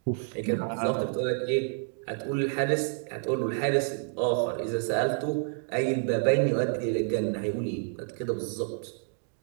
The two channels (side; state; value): left; silent; 56 dB below the other